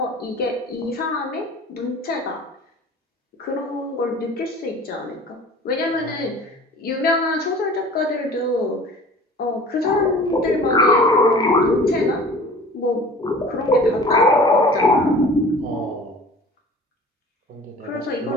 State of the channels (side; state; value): both; normal; correlation 0.45